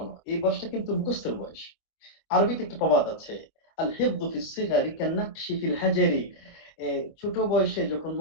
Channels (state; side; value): late; right; 25 ms